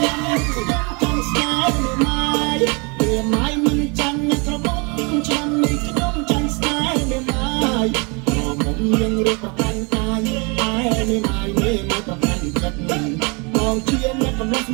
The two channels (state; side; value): quieter; left; 31.3 dB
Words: នាំនេះខ្ញុំចង់ស្នេហ៍ម៉ែមិនចាំណាក៏បងឆ្នាំនេះខ្ញុំចង់ស្នេហ៍ម៉ែក៏មុំយើងរៀបប្រកាន់កាយតែម៉ែប្រកាន់ចិត្តបងជាអ្នកកំឡុង